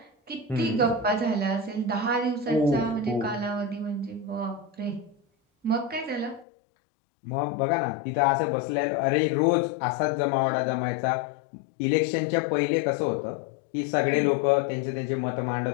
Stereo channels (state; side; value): drops out; right; at 6.5 s